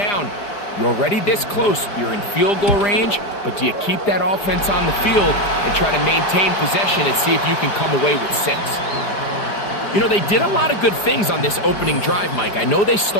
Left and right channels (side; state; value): right; late; 4.9 ms